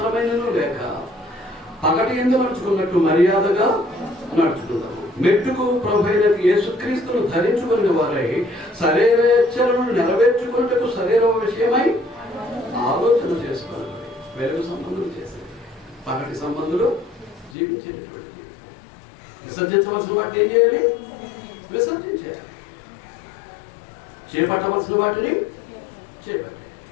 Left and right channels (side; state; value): right; drops out; at 17.6 s